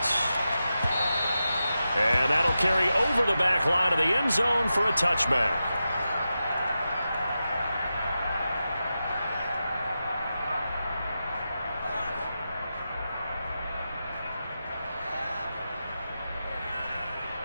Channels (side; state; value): both; inverted; correlation -0.90